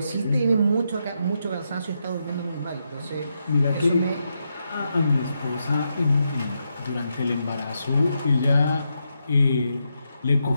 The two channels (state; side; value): inverted; both; correlation -0.83